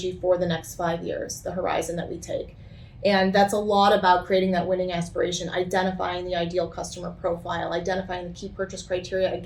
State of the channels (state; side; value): identical; both; correlation 1.00